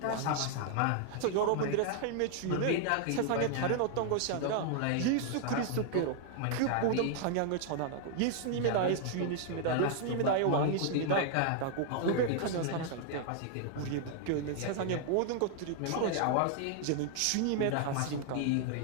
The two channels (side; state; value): both; different; correlation 0.00